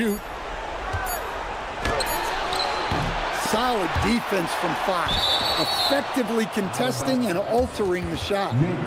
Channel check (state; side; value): identical; both; correlation 1.00